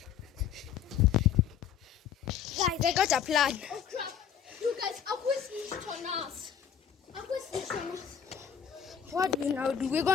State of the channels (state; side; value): quieter; right; 8.6 dB